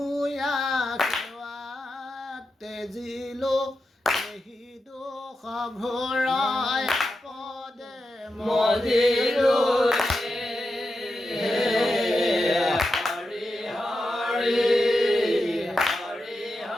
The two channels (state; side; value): normal; both; correlation 0.89